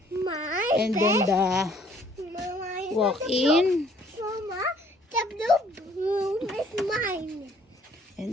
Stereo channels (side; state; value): both; normal; correlation 0.60